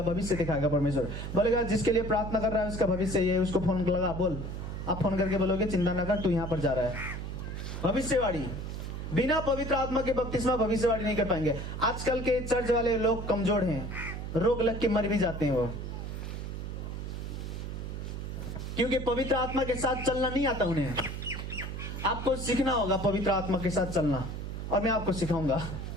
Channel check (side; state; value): right; noise; hum, 6 dB below the sound